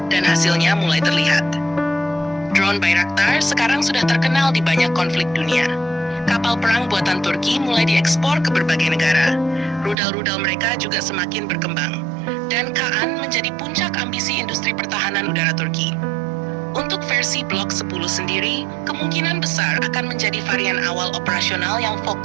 Dan hasilnya mulai terlihat. Drone Bayraktar sekarang sudah terkenal di banyak konflik dunia. Kapal perang buatan Turki mulai diekspor ke berbagai negara. Rudal-rudal mereka juga semakin berkembang, dan Kaan menjadi puncak ambisi industri pertahanan udara Turki. Untuk versi Blok 10 sendiri, kemungkinan besar akan menjadi varian awal operasional yang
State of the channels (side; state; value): left; drops out; at 10.0 s